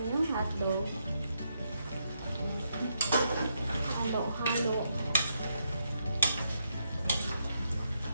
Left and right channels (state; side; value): inverted; both; correlation -0.80